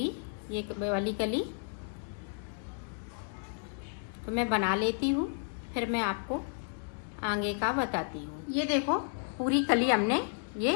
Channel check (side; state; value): right; silent; digital silence